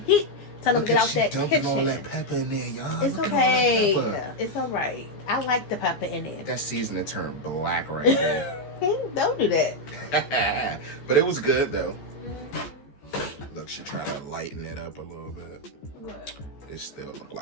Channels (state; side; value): late; right; 14 ms